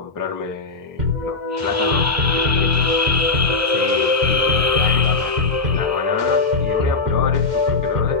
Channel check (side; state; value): right; quieter; 3.9 dB